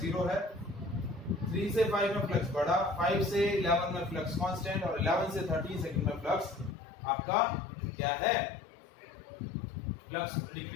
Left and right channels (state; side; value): drops out; right; at 6.8 s